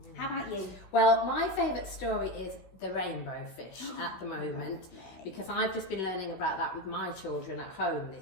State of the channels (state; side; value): late; right; 16 ms